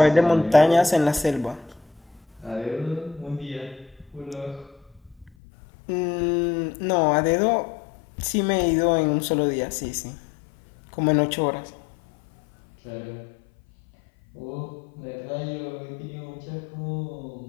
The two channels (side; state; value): right; drops out; at 5.3 s